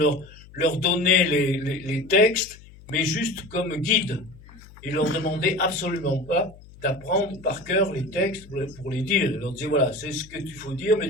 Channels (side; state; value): left; noise; hum, 21 dB below the sound